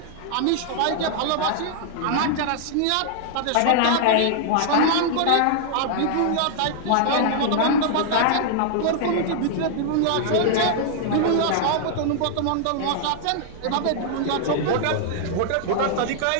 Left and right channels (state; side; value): different; both; correlation -0.01